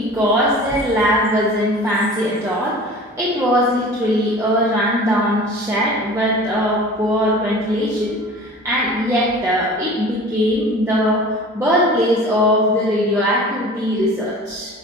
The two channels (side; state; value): both; normal; correlation 0.41